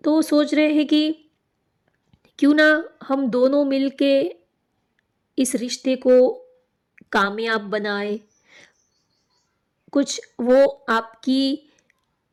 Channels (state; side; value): identical; both; correlation 1.00